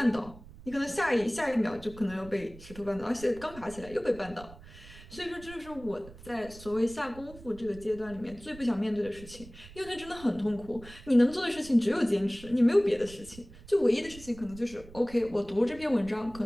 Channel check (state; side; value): noise; right; rumble, 18 dB below the sound